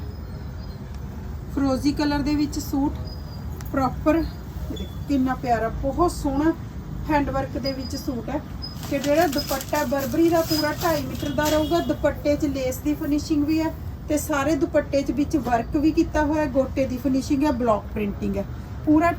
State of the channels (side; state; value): both; identical; correlation 1.00